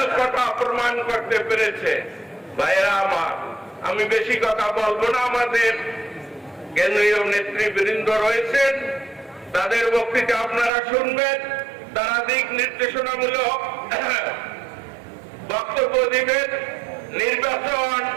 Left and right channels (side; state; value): left; drops out; at 10.7 s